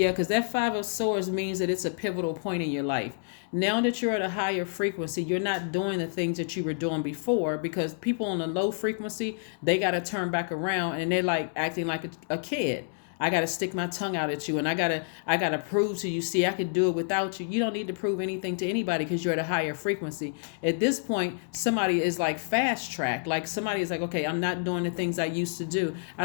because that Five of Swords means that it's a pivotal point in your life. Now that you're at a higher frequency, you're not doing the things that you were doing before, because people on a low frequency, they got to turn back around and they're like acting like a kid. I got to stick my tongue out at you, and I got to prove to you, see, I could do it without you. You don't need to prove anything to anybody because you're at a higher frequency. At this point, somebody is like fast track. Like somebody is like, okay, I'm not doing the things I used to do. I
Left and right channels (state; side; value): silent; right; digital silence